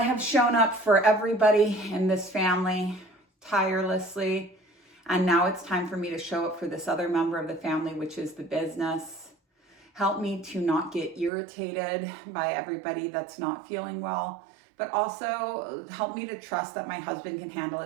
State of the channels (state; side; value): drops out; left; at 11.3 s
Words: have shown up for everybody in this family tirelessly. And now it's time for me to show up for this other member of the family, which is the business. Help me to not get irritated by everybody that's not feeling well, but also help me to trust that my husband can handle